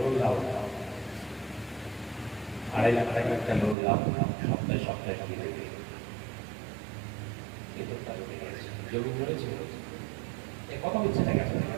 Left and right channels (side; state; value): left; drops out; at 3.8 s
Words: দাও, 2.5 লাখ টাকা একটা লোন দাও, সপ্তাহে সপ্তাহে দিয়ে দেবে। কিন্তু তার জমি ধরেছে, এ কথা বলছে না কেন?